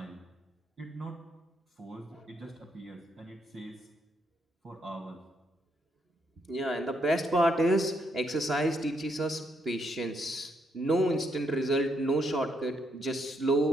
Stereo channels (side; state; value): both; normal; correlation 0.76